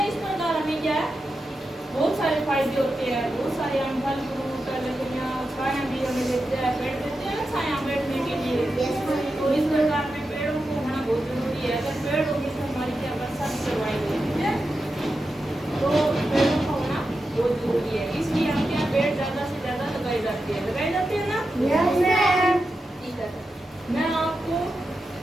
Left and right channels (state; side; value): normal; both; correlation 0.89